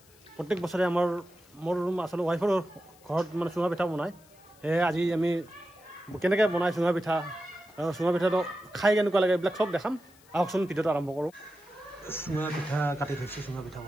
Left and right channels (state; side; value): noise; left; hiss, 28 dB below the sound